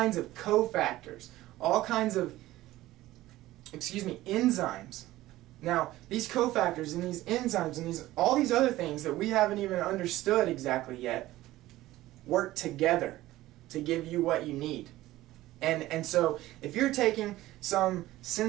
of cofactors, all kinds of, enzymes. Now, these cofactors and these enzymes and all these other things that we haven't even understood exactly yet work together to give you what you need. And so if you're taking some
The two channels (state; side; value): quieter; left; 16.3 dB